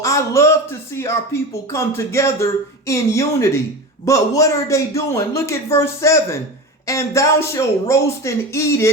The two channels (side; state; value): both; normal; correlation 0.27